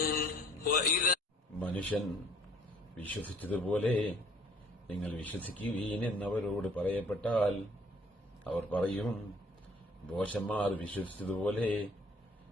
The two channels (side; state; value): both; normal; correlation 0.57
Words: മനുഷ്യൻ വിശ്വസിച്ചതുപോലെ നിങ്ങൾ വിശ്വസിക്കുവീൻ എന്നവരോട് പറയപ്പെട്ടാൽ അവർ പറയും, ഭോഷന്മാർ വിശ്വസിച്ചതുപോലെ